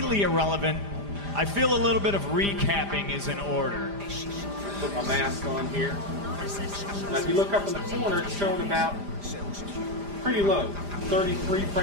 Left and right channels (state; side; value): late; left; 5.0 ms